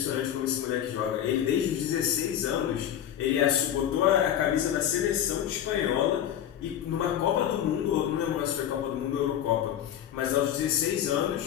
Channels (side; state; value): right; quieter; 10.4 dB